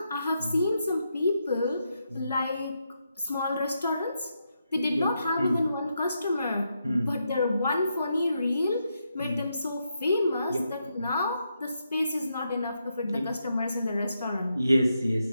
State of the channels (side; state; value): both; inverted; correlation -0.82